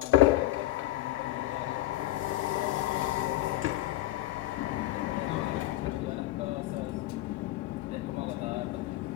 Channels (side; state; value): right; quieter; 15.5 dB